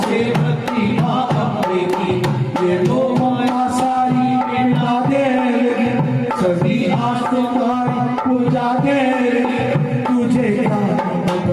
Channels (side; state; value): both; identical; correlation 1.00